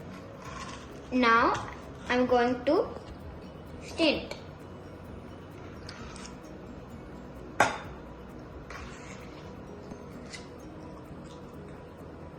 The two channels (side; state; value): both; identical; correlation 1.00